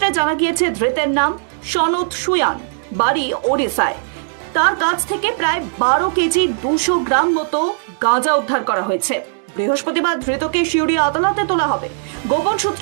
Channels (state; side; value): silent; left; digital silence